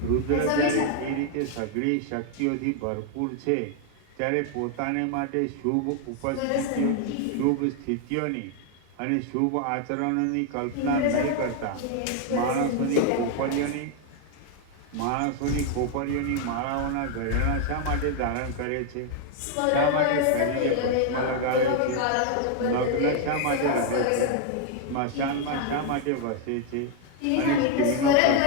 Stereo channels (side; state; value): both; different; correlation 0.00